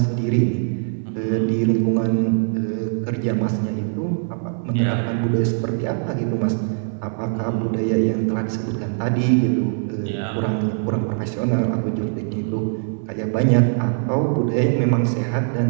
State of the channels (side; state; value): left; silent; 59 dB below the other